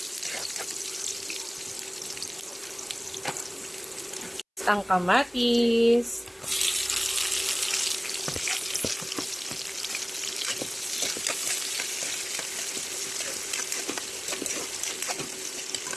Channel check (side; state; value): both; identical; correlation 1.00